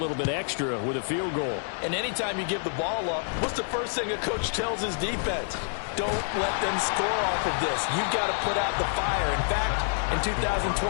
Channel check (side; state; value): right; silent; 60 dB below the other